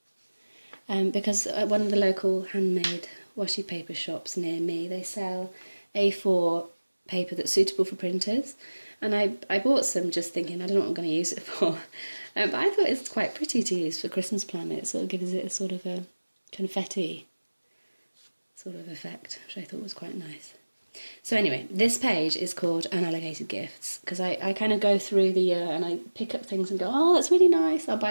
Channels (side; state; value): both; inverted; correlation -1.00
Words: because at one of the local handmade washi paper shops near me, they sell A4 paper that's suitable for printers, and I bought some just thinking I don't know what I'm going to use it for, but I thought it's quite pretty to use for Christmas planner. It sort of gives it a sort of a confetti sort of effect, which I thought was quite nice. So anyway, this page is called Unallocated Gifts, because I kind of go through the year and I pick up things and go, oh, that's really nice, I'll